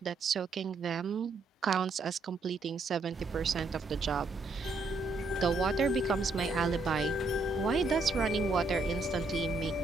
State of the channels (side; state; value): left; quieter; 3.4 dB